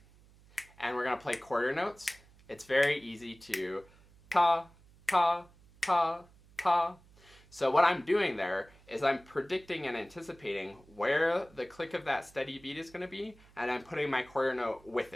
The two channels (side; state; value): right; noise; hum, 26 dB below the sound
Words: and we're going to play quarter notes. It's very easy to ta, ta, ta, ta. So what I'm doing there is I'm predicting and anticipating where the click of that steady beat is going to be, and I'm putting my quarter note with